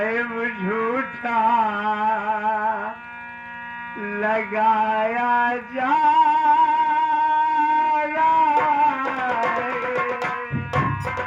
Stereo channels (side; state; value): both; identical; correlation 1.00